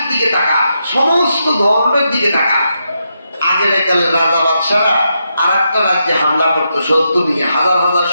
দিকে তাকা, সমস্ত ধর্মের দিকে তাকা। আগের কালে রাজা বাদশারা আর একটা রাজ্যে হামলা করতো, শত্রু নিয়ে হাজার হাজার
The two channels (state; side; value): inverted; both; correlation -0.83